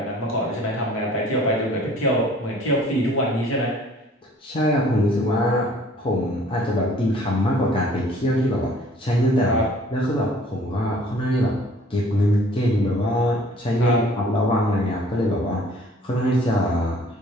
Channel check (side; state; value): both; normal; correlation 0.54